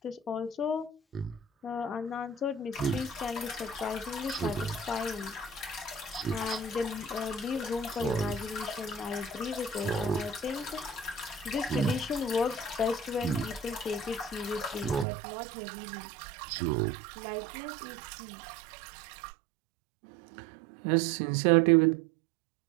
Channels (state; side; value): drops out; left; at 15.1 s